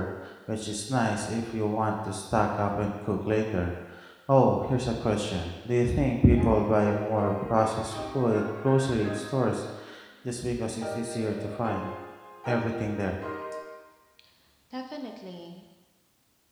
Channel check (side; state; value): both; identical; correlation 1.00